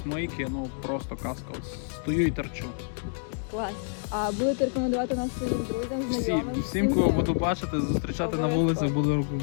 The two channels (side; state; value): right; silent; 59 dB below the other